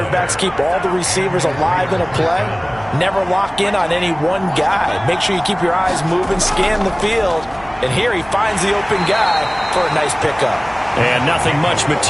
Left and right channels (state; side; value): noise; right; hum, 22 dB below the sound